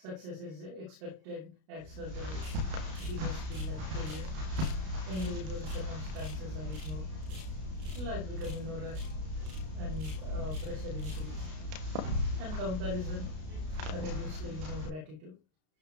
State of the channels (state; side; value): late; left; 32 ms